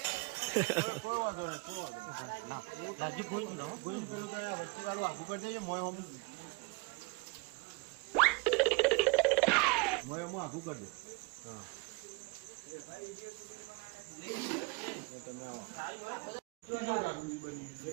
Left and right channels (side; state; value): left; quieter; 28.9 dB